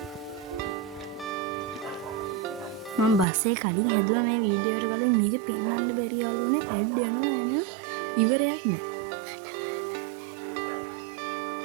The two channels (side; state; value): left; drops out; at 3.2 s